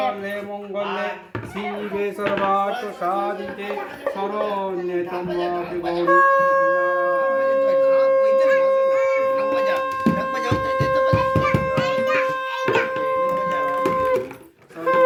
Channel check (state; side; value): identical; both; correlation 1.00